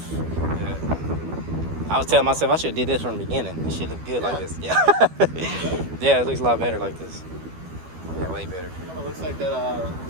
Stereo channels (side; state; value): left; late; 12 ms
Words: Yeah. I was telling myself I should have did this from the beginning. It should look good like this. Yeah. Yeah, it looks a lot better like this. Yeah, way better. Kind of looks like that.